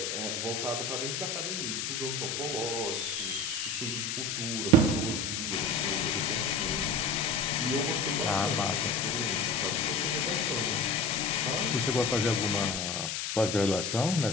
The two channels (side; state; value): left; noise; hiss, 2 dB below the sound